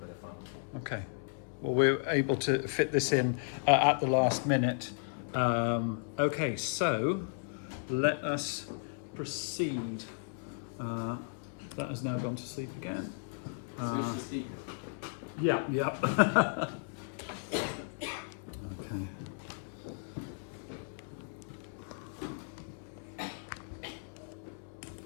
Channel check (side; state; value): right; silent; 55 dB below the other